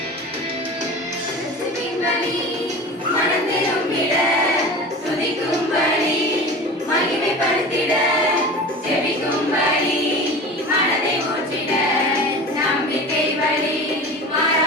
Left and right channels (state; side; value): normal; both; correlation 0.34